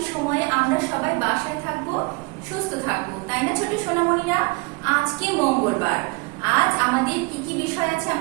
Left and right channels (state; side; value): quieter; left; 28.4 dB